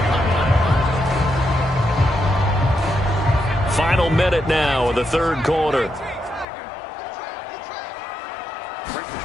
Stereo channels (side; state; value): right; drops out; at 6.5 s